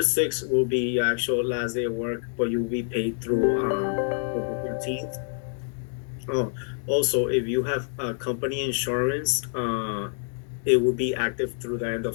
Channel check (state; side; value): silent; right; 59 dB below the other